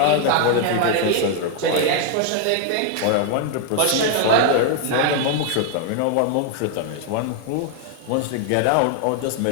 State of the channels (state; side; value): different; both; correlation 0.00